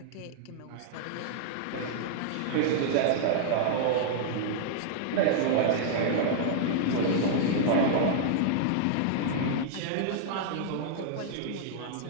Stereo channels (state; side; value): different; both; correlation -0.01